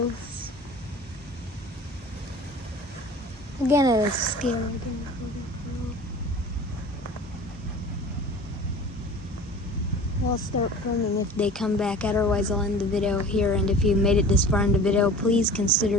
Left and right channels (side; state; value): both; normal; correlation 0.41